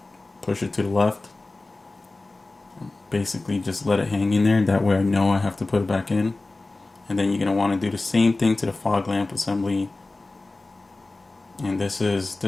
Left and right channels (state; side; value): quieter; right; 3.2 dB